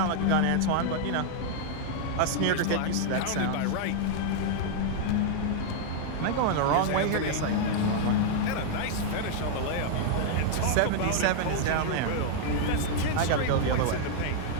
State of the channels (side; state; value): both; different; correlation 0.00